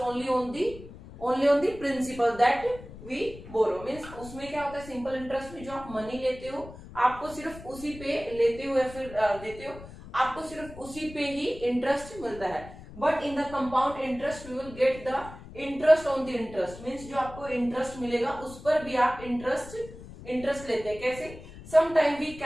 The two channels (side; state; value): left; noise; rumble, 16 dB below the sound